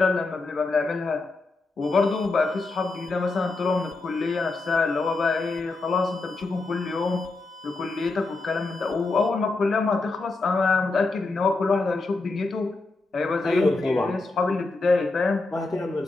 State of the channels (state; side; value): quieter; right; 3.5 dB